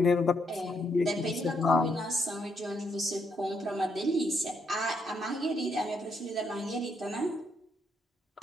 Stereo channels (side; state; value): both; normal; correlation 0.76